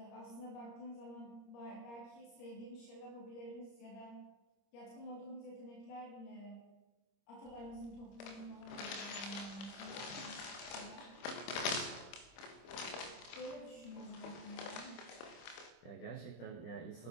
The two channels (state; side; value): late; right; 26 ms